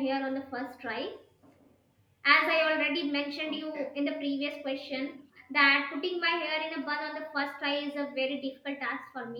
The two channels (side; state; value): both; identical; correlation 1.00